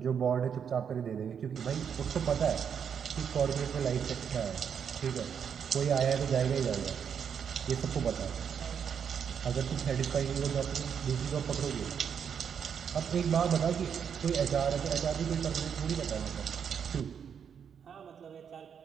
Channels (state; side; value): quieter; left; 7.5 dB